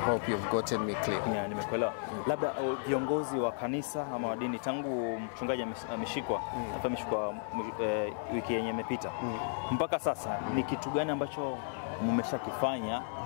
you've gotten me clear. Yeah, nimekuelewa. Labda viongozi wa kanisa ama wa dini, tangu mchungaji ameshikwa wiki yenye imepita mpaka sasa, ni kitu gani ambacho mmeshakifanya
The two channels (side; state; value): right; silent; 55 dB below the other